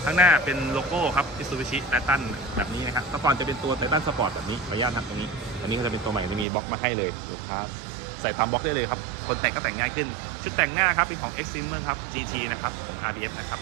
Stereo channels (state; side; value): drops out; left; at 6.5 s